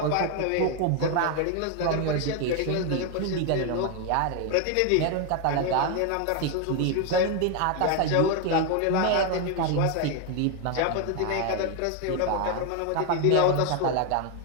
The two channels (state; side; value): different; both; correlation 0.01